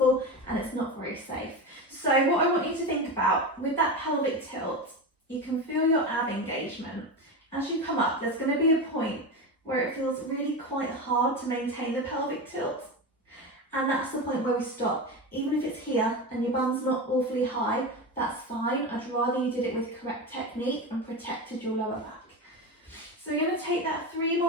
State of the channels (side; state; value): both; normal; correlation 0.21